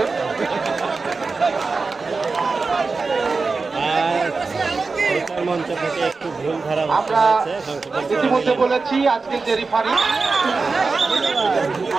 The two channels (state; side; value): quieter; left; 4.2 dB